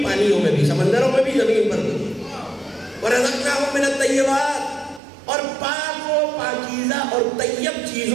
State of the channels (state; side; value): drops out; left; at 5.0 s